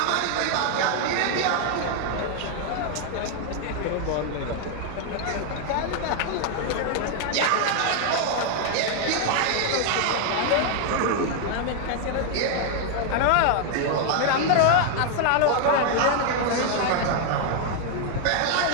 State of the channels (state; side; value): different; both; correlation 0.00